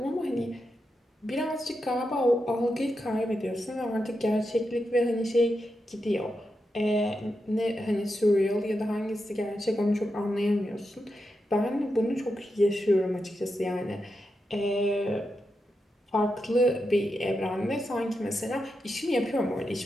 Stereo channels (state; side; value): normal; both; correlation 0.87